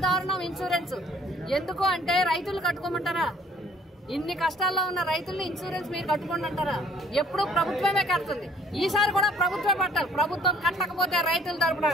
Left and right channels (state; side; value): normal; both; correlation 0.58